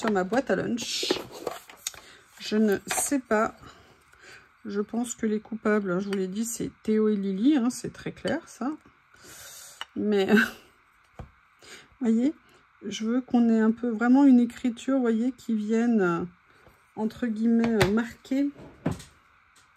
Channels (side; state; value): both; identical; correlation 1.00